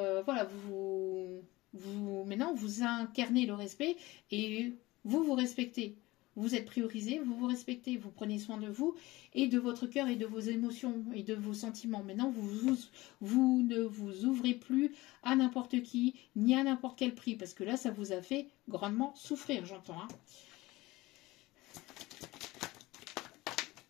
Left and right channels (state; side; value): quieter; right; 19.8 dB